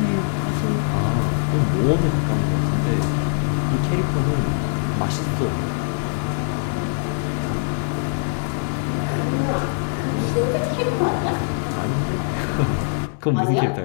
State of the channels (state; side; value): silent; right; digital silence